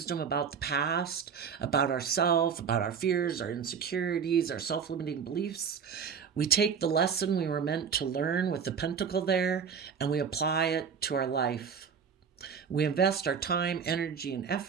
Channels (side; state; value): left; quieter; 6.7 dB